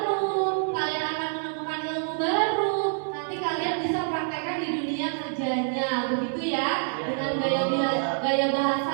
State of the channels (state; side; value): silent; left; 58 dB below the other